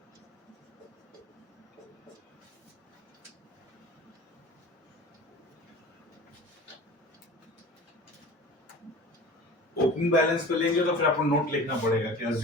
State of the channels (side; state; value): right; late; 1.1 ms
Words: ओपनिंग बैलेंस पे लेंगे तो फिर आपको नोट लिखना पड़ेगा कि